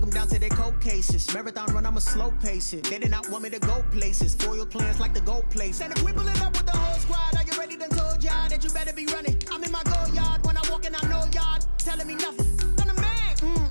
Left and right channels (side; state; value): both; inverted; correlation -1.00